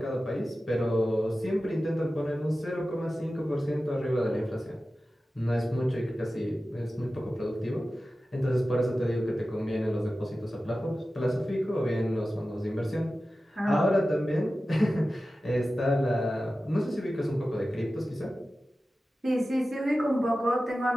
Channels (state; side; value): normal; both; correlation 0.94